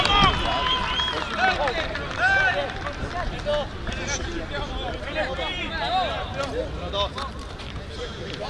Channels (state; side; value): identical; both; correlation 1.00